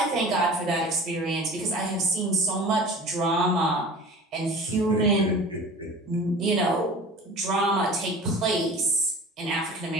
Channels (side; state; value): both; normal; correlation 0.40